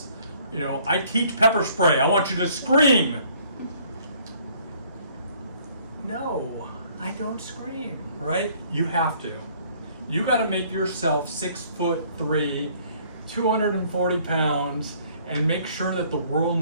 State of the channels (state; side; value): inverted; both; correlation -0.60